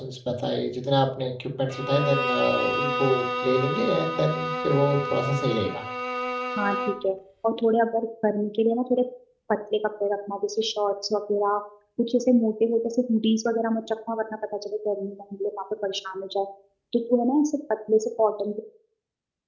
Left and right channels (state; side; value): identical; both; correlation 1.00